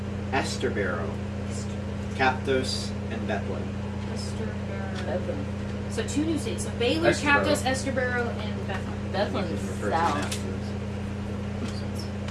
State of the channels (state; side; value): identical; both; correlation 1.00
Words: Esterboro, Captos, and Bethlehem. Bethlehem. So 2 new cities. So Baylor, Esterboro. Captos, Esterboro, and Bethlehem. Bethlehem You is can refer to south. them afterwards.